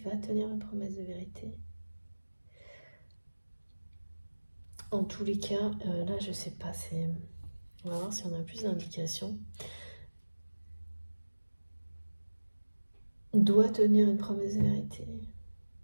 va tenir une promesse de vérité. En tous les cas, là je sais pas, on va voir si on a plus d'indications. Doit tenir une promesse de vérité.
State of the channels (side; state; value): both; inverted; correlation -1.00